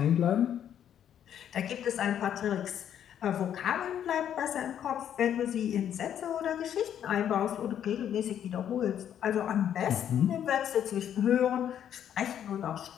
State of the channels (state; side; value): quieter; right; 9.7 dB